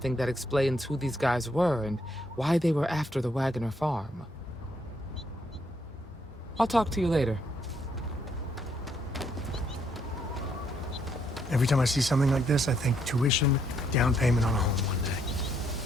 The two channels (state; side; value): normal; both; correlation 0.72